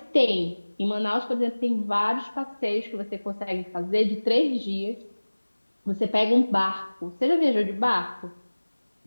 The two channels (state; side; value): inverted; both; correlation -1.00